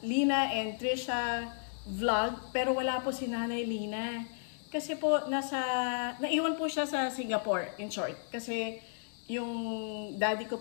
Lina and Trisha vlog. Pero wala po si Nanay Lina. Kasi po naiwan po siya sa Singapore, in short. Kasi yung daddy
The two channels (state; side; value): silent; right; digital silence